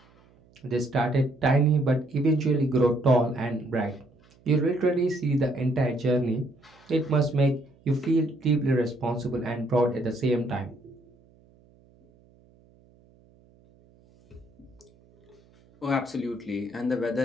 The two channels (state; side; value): noise; right; hum, 30 dB below the sound